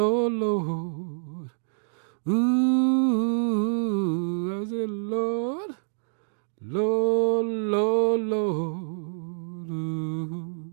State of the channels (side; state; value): left; silent; digital silence